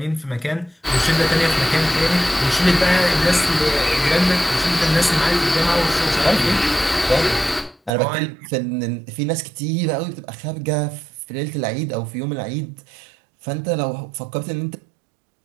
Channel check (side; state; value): left; drops out; at 7.9 s